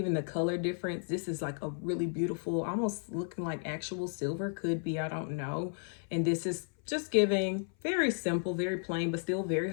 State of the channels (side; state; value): right; silent; 56 dB below the other